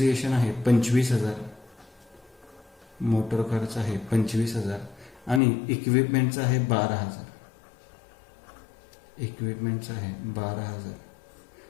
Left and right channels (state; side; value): drops out; right; at 5.4 s